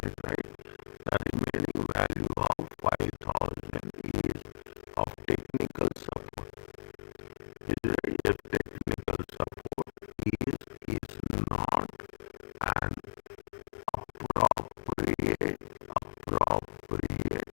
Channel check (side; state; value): right; silent; 55 dB below the other